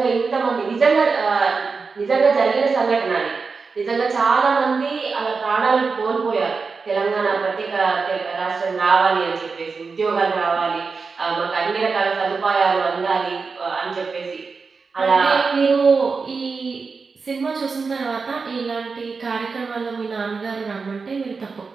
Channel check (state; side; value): quieter; left; 4.7 dB